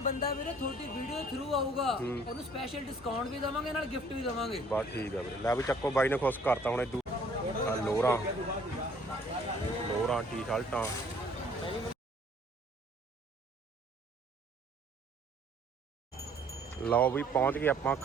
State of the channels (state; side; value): normal; both; correlation 0.58